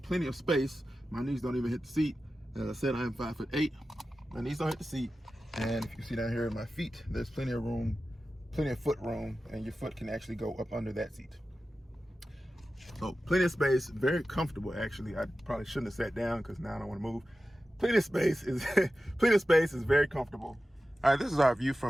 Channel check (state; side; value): normal; both; correlation 0.94